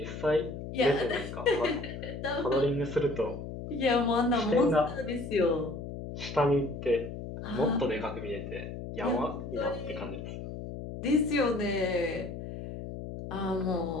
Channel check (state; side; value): noise; left; hum, 8 dB below the sound